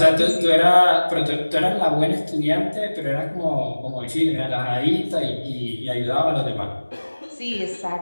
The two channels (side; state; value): both; inverted; correlation -1.00